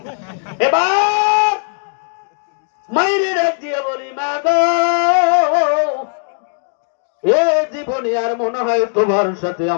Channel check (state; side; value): silent; right; 64 dB below the other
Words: এবার মায়ের ডাক দিয়ে বলি, মা গো, এ জীবনে আর মনে হয় তোমার সাথে